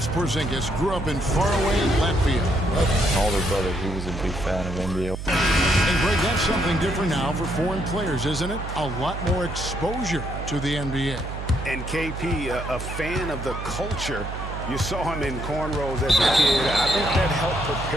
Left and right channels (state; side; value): noise; right; hum, 7 dB below the sound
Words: Porzingis grew up in faraway Latvia. My older brother, he was a big fan of NBA. And Greg, that's something different now for foreign players, isn't it? A lot more exposure to the NBA. And KP, a fan of the culture. You saw him in cornrows as a kid. I think that helped